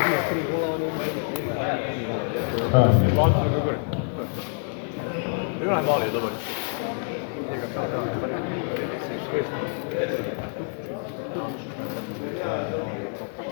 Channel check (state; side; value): silent; right; 55 dB below the other